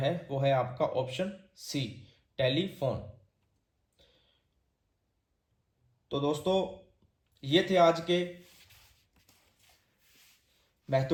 वो है आपका ऑप्शन सी, टेलीफोन। तो दोस्तों ये थे आज के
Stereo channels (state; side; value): identical; both; correlation 1.00